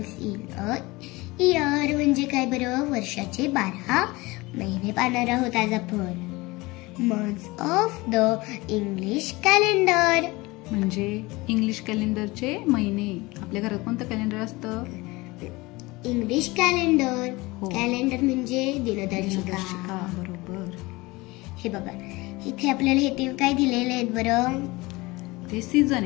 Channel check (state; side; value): quieter; right; 22.4 dB